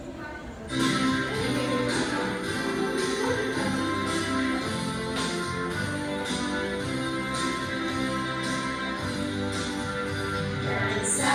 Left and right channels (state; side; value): identical; both; correlation 1.00